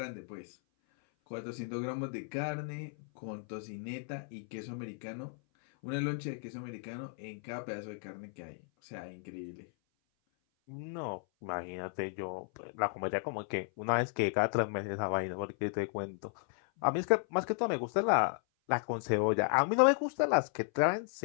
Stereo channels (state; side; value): silent; right; 55 dB below the other